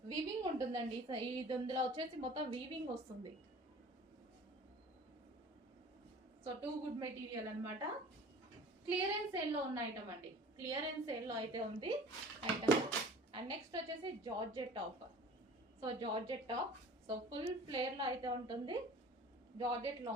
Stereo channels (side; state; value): both; normal; correlation 0.45